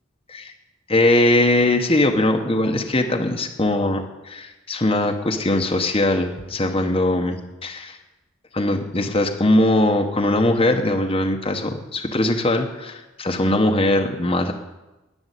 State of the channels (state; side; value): normal; both; correlation 0.56